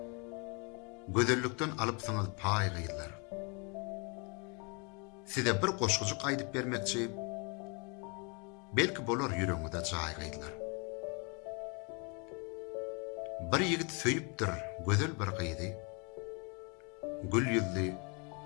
Gödellükden alıp saňyz pay gıylar. Size bir goşgujuk aýdyp bermekçi, belki bolar ýüregiňizde jaý gıylar. Bir ýigit söýüpdir gözel bir gyýdy, gül ýüzli,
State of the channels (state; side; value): quieter; right; 33.4 dB